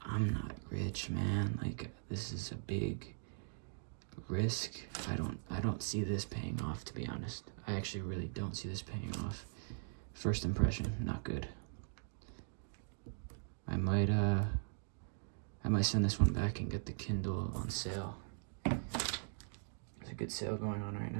I'm not rich, man. Like, this is a big risk. I don't see this paying off, to be honest. I actually really don't see this paying off. First impression, not good. I might send this one back and get the Kindle on sale. There's a good sale going on right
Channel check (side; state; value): left; silent; digital silence